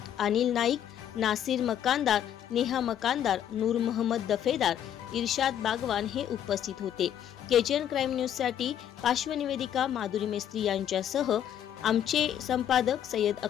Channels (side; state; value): right; quieter; 10.1 dB